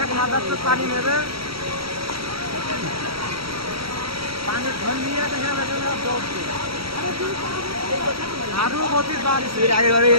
মাদ্রাসা পানি নেবে পানি ধন নিয়ে দেখা যাবে দৌড়ছে আরো গতি বাড়ছে আগে বাড়ি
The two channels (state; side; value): late; left; 0.75 ms